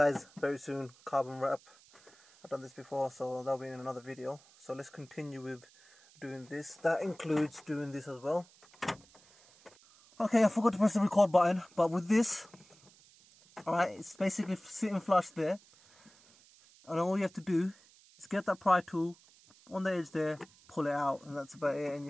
very soon, carbon wrap. I've done this before, so that'll be in another video. So let's continue with doing this. That includes doing this as well. Okay, I forgot to press the record button, but with this, alright, it's basically sitting flush there. And all you have to do is get that pry tool on the edge there, pull it out, and that's about it. And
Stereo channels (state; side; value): noise; right; hiss, 26 dB below the sound